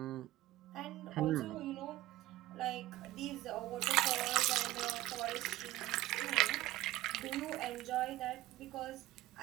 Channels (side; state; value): left; quieter; 16.5 dB